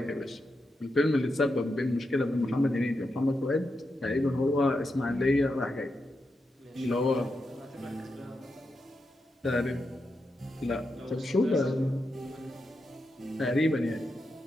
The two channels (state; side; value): normal; both; correlation 0.86